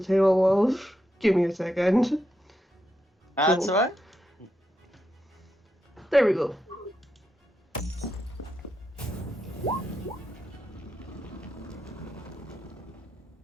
tail of. Give me a second. That's Cool. alright. There we go.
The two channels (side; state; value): both; normal; correlation 0.84